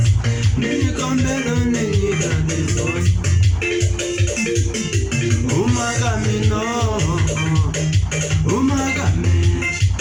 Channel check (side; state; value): both; identical; correlation 1.00